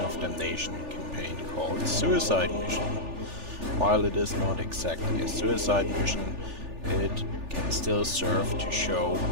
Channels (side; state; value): left; late; 3.4 ms